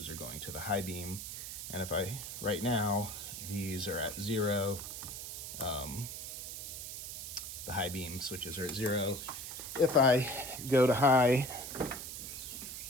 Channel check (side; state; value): right; noise; hiss, 7 dB below the sound